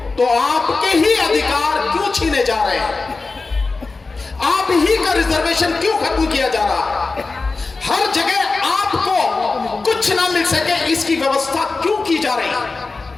तो आपके ही अधिकार क्यों छीने जा रहे हैं? आप ही का रिजर्वेशन क्यों खत्म किया जा रहा है? हर जगह आपको कुछ ना मिल सके इसकी व्यवस्था क्यों की जा रही है?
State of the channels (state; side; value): quieter; right; 3.9 dB